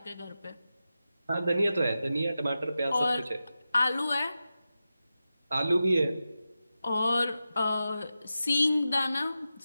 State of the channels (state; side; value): inverted; both; correlation -0.91